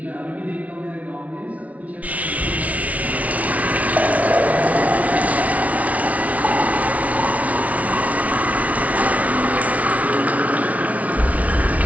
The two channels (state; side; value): late; left; 0.068 ms